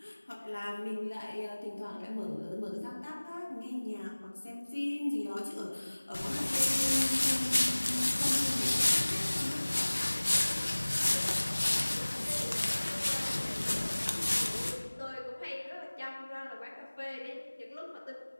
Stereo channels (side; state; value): both; inverted; correlation -1.00